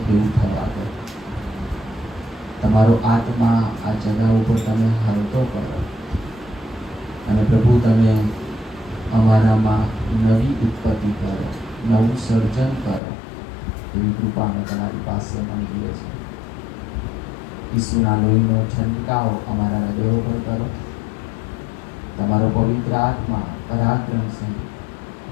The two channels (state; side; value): drops out; right; at 13.0 s